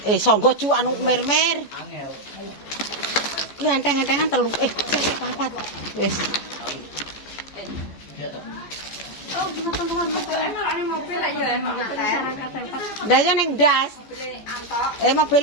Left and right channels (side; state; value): right; late; 14 ms